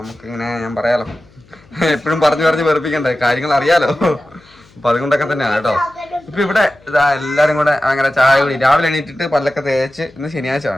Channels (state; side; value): noise; left; hum, 28 dB below the sound